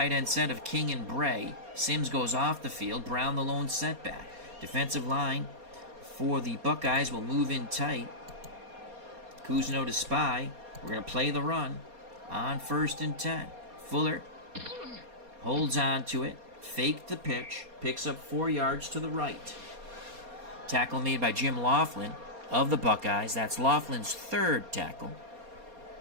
end set of King and Bray. Sims goes off the field. Brown the lone setback. Defensive line for the Buckeyes will move in tight. Cousineau to spy. We're going to play the run on 1st and 10. Fuller holds on to it. Faked the pitch. Picks up 4 yards to the right. Tackle made by Jim Laughlin of the Buckeyes. That's Laughlin's 3rd tackle.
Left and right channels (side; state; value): left; late; 4.2 ms